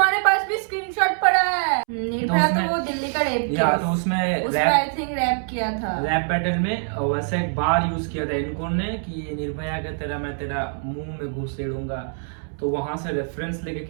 पास भी स्क्रीनशॉट पड़ा है? निर्भया तो वो दिल्ली का रैप या तो उसमें आई थिंक रैप किया था, रैप बैटल में वैसे एक बार यूज किया था इनको ने कि निर्भया के तेरा मैं तेरा मुंह में घुसेड़ूंगा, तो वहां से रेफरेंस लेके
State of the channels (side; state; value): left; silent; 62 dB below the other